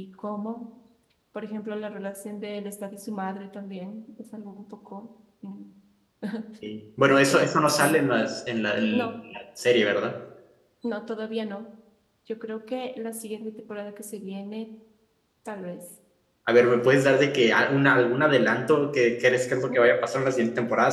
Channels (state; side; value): identical; both; correlation 1.00